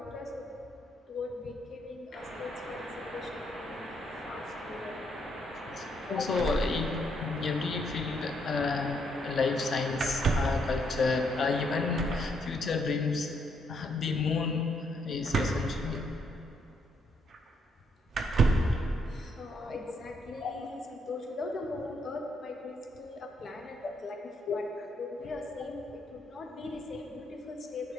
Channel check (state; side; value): normal; both; correlation 0.74